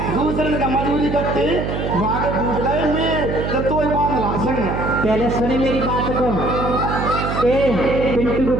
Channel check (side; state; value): right; noise; hum, 3 dB below the sound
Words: दूसरे का मजबूरी करते वागे फूट गए में तो ही बात लाशन। पहले सुनी मेरी बात को। ए पिंटू को